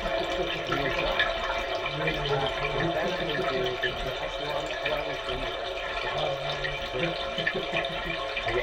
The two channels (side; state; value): both; identical; correlation 1.00